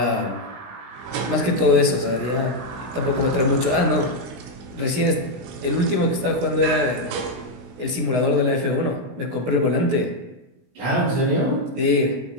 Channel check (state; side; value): late; left; 16 ms